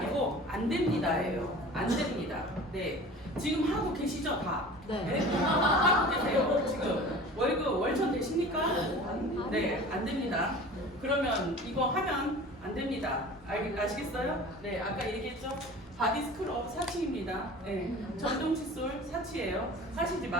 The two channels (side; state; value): both; normal; correlation 0.40